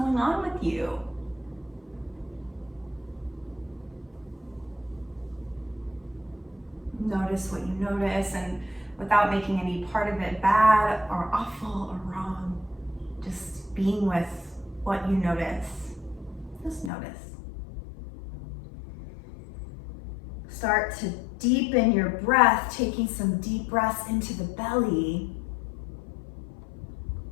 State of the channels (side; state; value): right; drops out; at 16.9 s